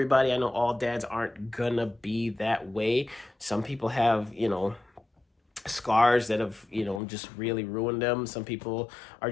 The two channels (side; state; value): right; drops out; at 7.0 s